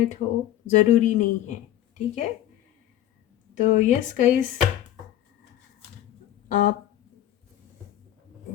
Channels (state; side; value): quieter; right; 12.6 dB